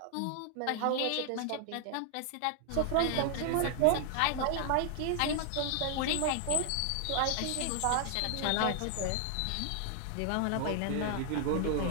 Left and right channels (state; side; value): different; both; correlation 0.00